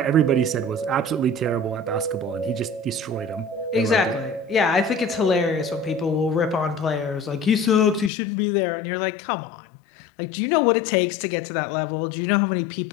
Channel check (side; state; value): right; drops out; at 8.1 s